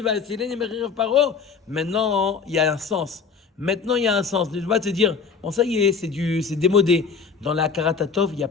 Vayatzileni mecherev paro? Maintenant, il y a un sens. Maintenant, il y a un sens. Ne pas te dire, bon, ça y est, c'est démodé. Dans la Karatatov, il n'y a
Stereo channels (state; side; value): quieter; right; 5.6 dB